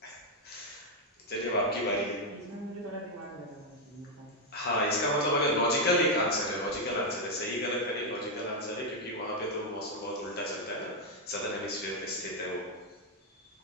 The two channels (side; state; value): both; normal; correlation 0.01